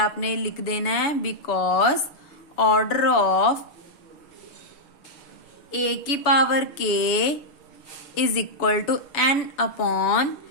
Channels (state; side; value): late; right; 7.0 ms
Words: लिख देना है बिकॉज ऑर्डर ऑफ ए की power K is equal to N upon